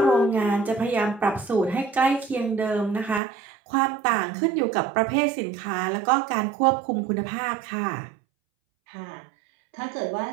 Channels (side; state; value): left; drops out; at 3.2 s